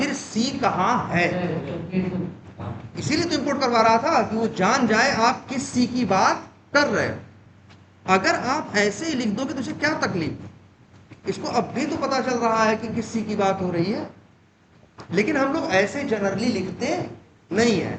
सी कहां है। इसीलिए तो इंपोर्ट करवा रहा था कि वो जान जाए आप किस सी की बात कर रहे हो। अगर आप ऐसे ही लिख दोगे तो इसे क्या तकलीफ, इसको अब भी तो पता चल रहा है कि किस सी की बात हो रही है। लेकिन हम लोग ऐसे जनरली लिखते नहीं है।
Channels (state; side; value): identical; both; correlation 1.00